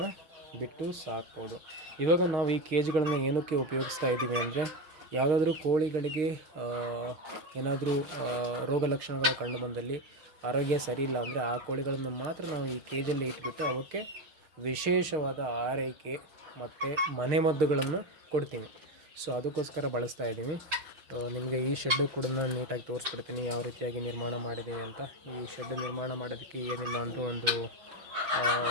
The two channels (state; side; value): late; left; 6.5 ms